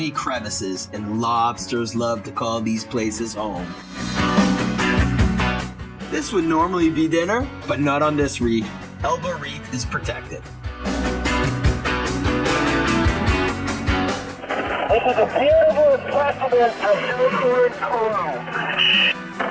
crevices, and lobsters love to call these places home. This would normally be dinner, but not on this reef. Elbow Reef is protected. This is a beautiful specimen of Hillside coral.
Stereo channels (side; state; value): both; identical; correlation 1.00